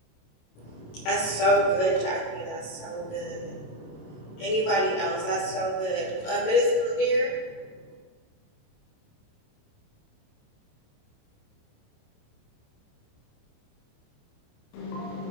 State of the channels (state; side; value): late; right; 27 ms